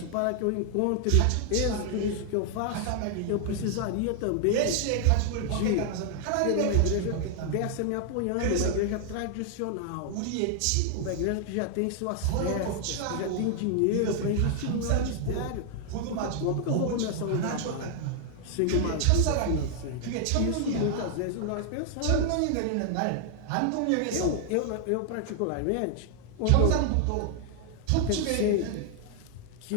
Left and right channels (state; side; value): different; both; correlation 0.00